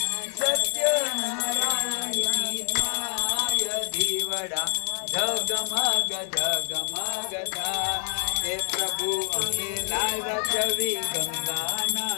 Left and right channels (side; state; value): right; silent; digital silence